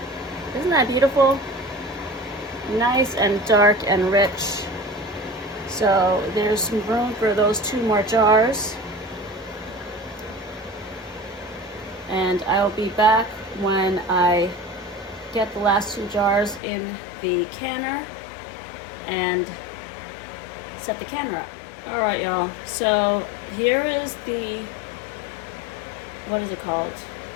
Isn't that beautiful? Nice and dark and rich. So there's some room for those 2 more jars. And I'll be back when I get the last 2 jars in the canner and set the canner up. All right, y'all. So here is the, what is it called?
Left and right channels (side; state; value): right; drops out; at 16.6 s